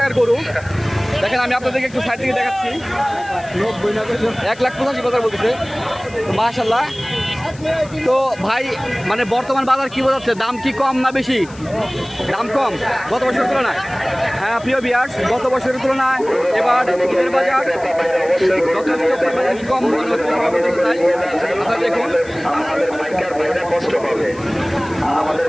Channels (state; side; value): noise; left; hiss, 23 dB below the sound